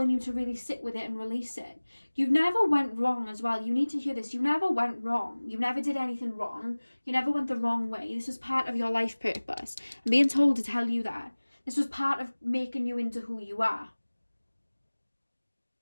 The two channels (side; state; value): both; inverted; correlation -1.00